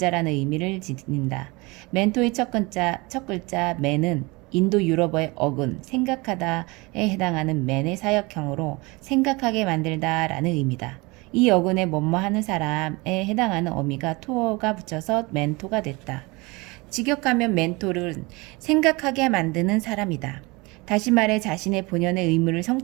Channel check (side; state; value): left; quieter; 25.2 dB